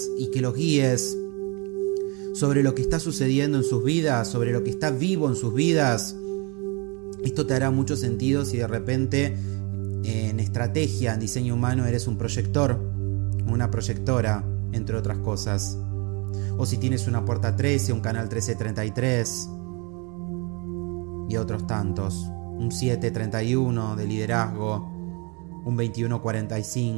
y que los guíes sobre lo que está sucediendo en sus vidas, sobre lo que está vivo en sus vidas? Esto te hará mucho sentido si de repente en estrategia, en diseño humano, eres un proyector, una proyectora, entre otras cosas. O si tienes una puerta 13, un canal 1333 y otros tantos. Un 731 de liderazgo, un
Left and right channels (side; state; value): left; quieter; 31.0 dB